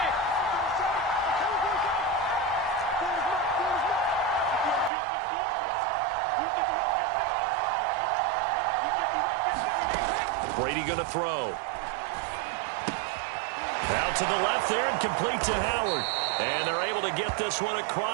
Brady going to throw. Out to the left there and complete to Howard. And they're able to get this one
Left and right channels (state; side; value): drops out; left; at 4.9 s